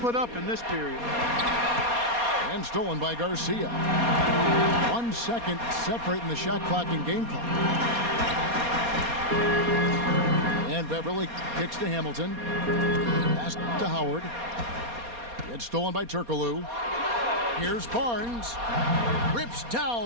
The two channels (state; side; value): late; left; 4.2 ms